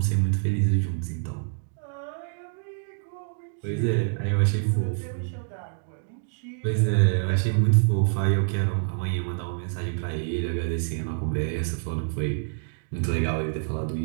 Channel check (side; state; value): left; silent; digital silence